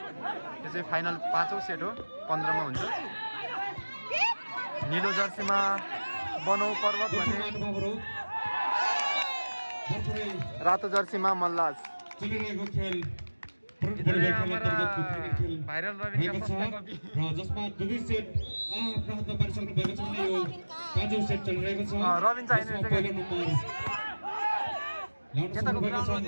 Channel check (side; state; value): both; inverted; correlation -1.00